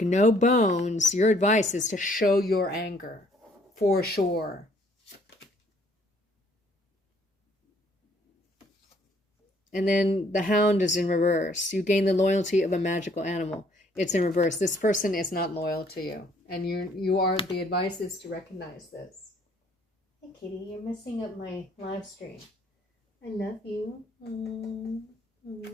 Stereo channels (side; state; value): both; normal; correlation 0.63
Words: no bones. Your advice is to show your anger, for sure. And then the hound is in reverse. You gain the loyalty of a magical animal. It's in reverse. This person is not loyal to you. And the advice is to recognize this. Hey, kitty, you're messing up my live stream. I love you. Come